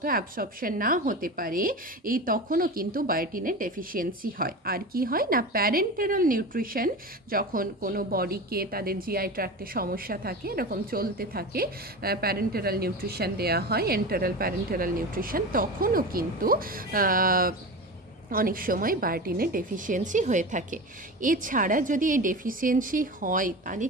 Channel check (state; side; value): normal; both; correlation 0.28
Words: অ্যাবসর্পশন না হতে পারে এই তখনও কিন্তু বায়োটিনের ডেফিসিয়েন্সি হয়। আর কি হয় না, প্যারেন্টেরাল নিউট্রিশন, যখন কোনো বডিকে তাদের জিআই ট্র্যাক্টে সমস্যা থাকে, এরকম চলতে থাকে, প্যারেন্টেরাল নিউট্রিশন দেওয়া হয়, এন্টারাল প্যারেন্টেরাল নিউট্রিশন, তখনও কিন্তু অনেক সময় বায়োটিনের ডেফিসিয়েন্সি হয়ে থাকে। এছাড়া যদি এই ডেফিসিয়েন্সি হয় তাহলে